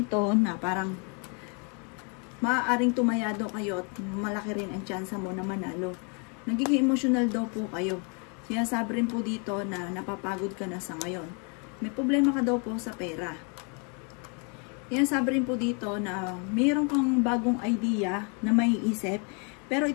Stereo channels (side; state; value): right; quieter; 36.5 dB